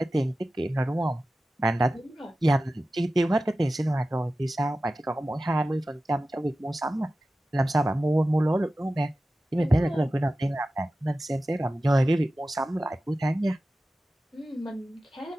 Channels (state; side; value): normal; both; correlation 0.95